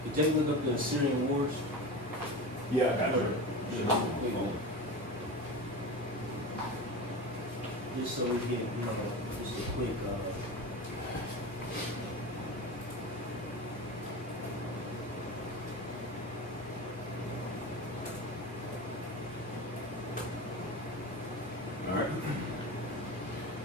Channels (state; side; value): normal; both; correlation 0.28